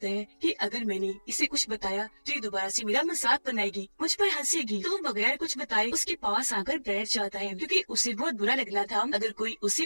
है कि अगर मैंने इसे कुछ बताया तो ये दोबारा से मेरा मजाक बनाएगी, मुझ पर हंसेगी, तो वो बगैर कुछ बताए उसके पास आकर बैठ जाता है, क्योंकि उसे बहुत बुरा लगना था अगर कोई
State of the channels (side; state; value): both; inverted; correlation -1.00